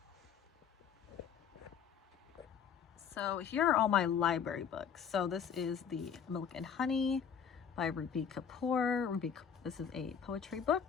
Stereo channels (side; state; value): right; quieter; 7.5 dB